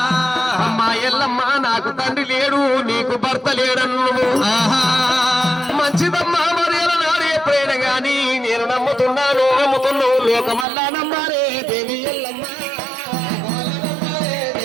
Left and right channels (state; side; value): drops out; left; at 10.7 s